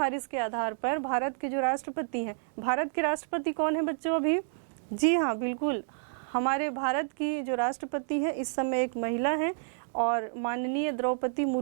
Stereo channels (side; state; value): left; silent; digital silence